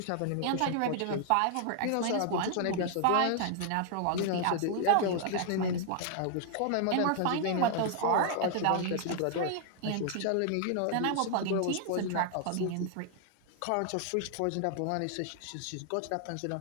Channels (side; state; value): both; different; correlation 0.00